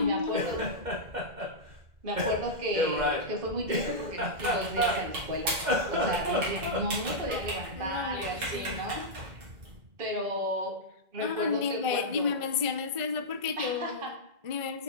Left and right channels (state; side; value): late; left; 2.0 ms